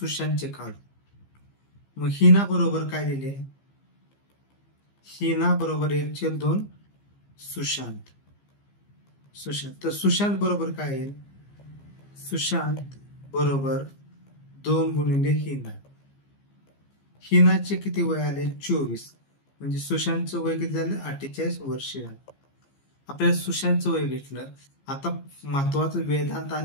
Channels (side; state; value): right; late; 15 ms